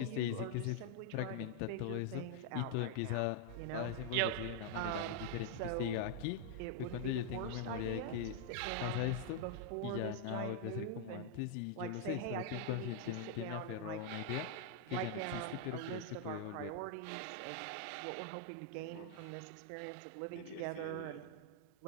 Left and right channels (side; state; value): both; different; correlation 0.00